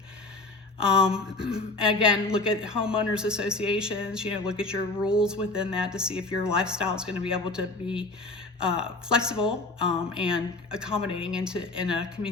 Again, look at homeowners associations, look at your rules within that to see if your lifestyle is going to be able to be flexible and accommodating in a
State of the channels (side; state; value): right; quieter; 3.2 dB